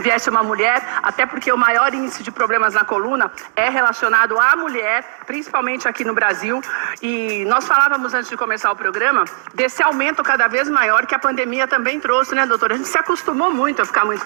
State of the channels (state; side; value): silent; left; digital silence